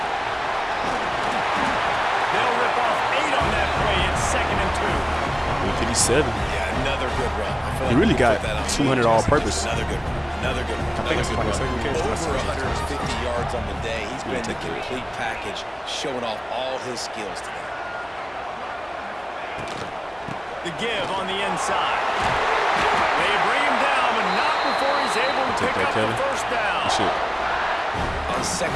They'll rip off 8 on that play. It's 2nd and 2. 157. Yeah, another good run. He really got 200 all-purpose. Another good run. Another good run. I think it's like a second catch. Over 150 yards on the day. He's been the complete package, showing off all his skills today. The give on the inside. They bring him down, but not before he's able to pick up the 1st down. Shit. On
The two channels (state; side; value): identical; both; correlation 1.00